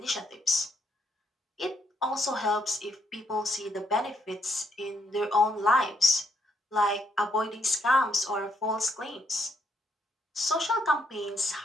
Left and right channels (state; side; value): normal; both; correlation 0.73